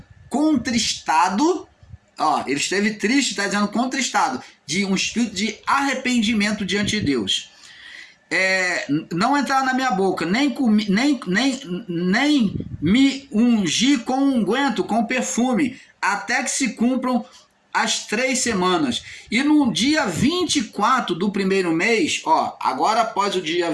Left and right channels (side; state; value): both; identical; correlation 1.00